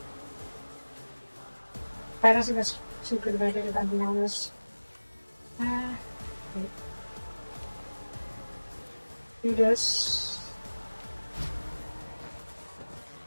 But I don't think that's too good of an idea, if I'm being honest. Wait. Do this.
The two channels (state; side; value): inverted; both; correlation -1.00